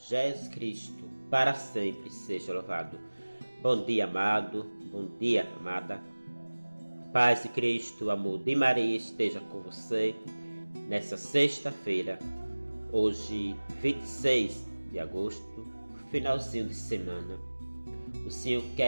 Cristo, para sempre seja louvado. Bom dia, amado, bom dia, amada. Paz de Cristo, amor de Maria esteja com você nessa sexta-feira, hoje 26 de agosto, finalzinho de semana. O Senhor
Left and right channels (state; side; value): inverted; both; correlation -1.00